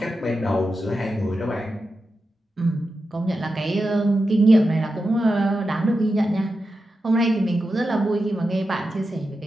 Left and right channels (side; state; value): both; normal; correlation 0.90